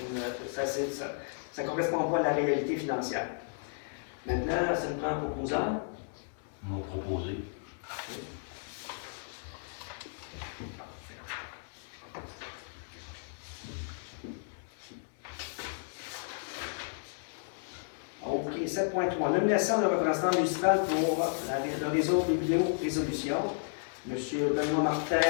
ça ne correspond pas à la réalité financière. Maintenant, ça nous prend un proposant. M'ont proposé. 7.3. Nomination de représentant municipal pour le réseau Biblio-Résolution. M. Benoît Martin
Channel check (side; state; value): right; silent; digital silence